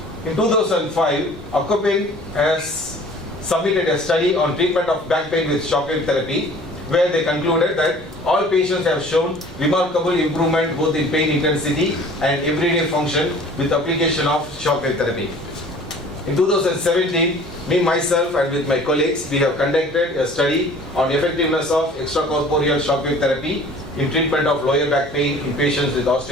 In 2005, Outpatient has submitted a study on treatment of back pain with shockwave therapy, where they concluded that all patients have shown remarkable improvement both in pain intensity and everyday function with application of shockwave therapy. In 2017, myself and with my colleagues, we have conducted a study on effectiveness of extracorporeal shockwave therapy in treatment of lower back pain in patients with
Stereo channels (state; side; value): normal; both; correlation 0.48